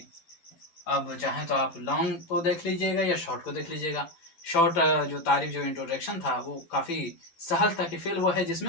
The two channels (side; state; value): right; late; 12 ms